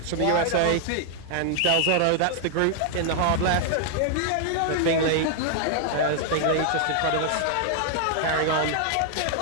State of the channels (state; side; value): different; both; correlation 0.00